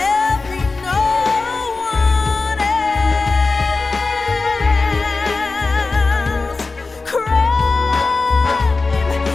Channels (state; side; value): quieter; right; 3.8 dB